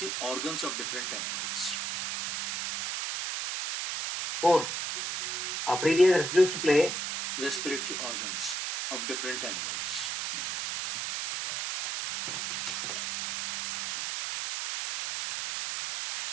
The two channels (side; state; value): right; noise; hiss, 3 dB below the sound